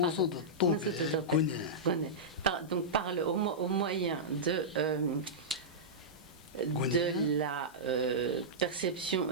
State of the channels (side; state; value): left; noise; hiss, 24 dB below the sound